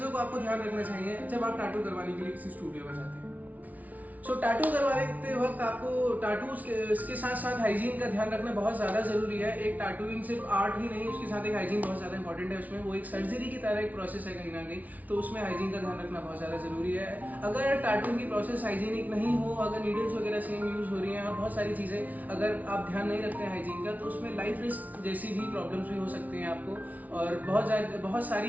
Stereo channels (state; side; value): late; left; 0.074 ms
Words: को आपको ध्यान रखना चाहिए जब आप टैटू करवाने के लिए किसी स्टूडियो में जाते हैं। टैटू करवाते वक्त आपको टैटूज के साथ साथ हाइजीन का ध्यान रखना बहुत ज़्यादा ज़रूरी है। एक टैटूइंग सिर्फ आर्ट ही नहीं, उसके साथ एक हाइजीन बहुत ज़्यादा इंपॉर्टेंट है। उसमें वो एक सर्जरी की तरह एक प्रोसेस है कहीं ना कहीं, तो उसमें हाइजीन का ध्यान रखना बहुत ज़्यादा ज़रूरी है। अगर टैटूइंग की प्रोसेस हाइजीनिक नहीं हो, अगर नीडल्स वगैरह सेम यूज़ हो रही हैं और बहुत सारी चीज़ें अगर आप ध्यान नहीं रखते हैं हाइजीन का, तो उसमें लाइफ रिस्क जैसी भी प्रॉब्लम्स भी हो सकती हैं आपको और बहुत